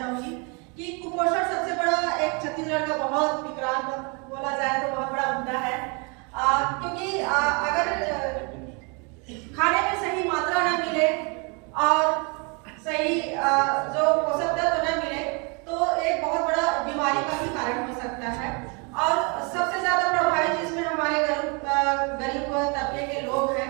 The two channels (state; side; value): quieter; left; 32.8 dB